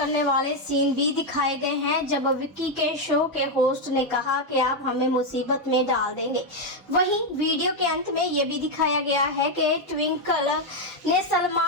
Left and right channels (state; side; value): normal; both; correlation 0.04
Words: वाले सीन भी दिखाए गए हैं जब विक्की के शो के होस्ट ने कहा कि आप हमें मुसीबत में डाल देंगे। वहीं वीडियो के अंत में ये भी दिखाया गया है कि ट्विंकल ने